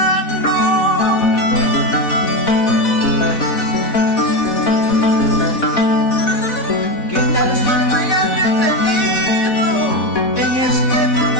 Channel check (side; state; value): right; late; 3.6 ms